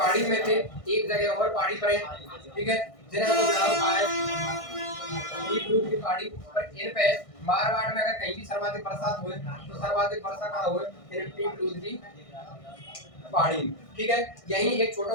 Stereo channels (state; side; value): late; right; 1.6 ms